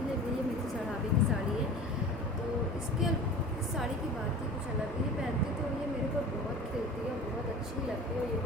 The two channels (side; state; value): both; normal; correlation 0.38